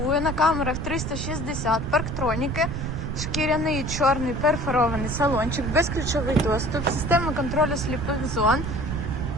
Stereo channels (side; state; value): right; noise; rumble, 4 dB below the sound